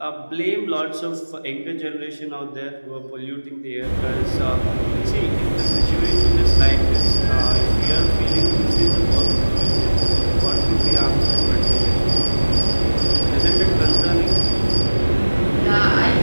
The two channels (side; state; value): both; inverted; correlation -1.00